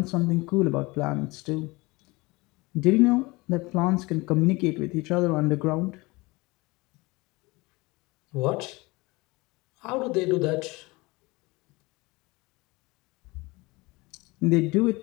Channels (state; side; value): quieter; right; 23.5 dB